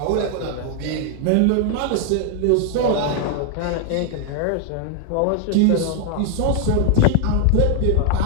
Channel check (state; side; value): different; both; correlation 0.00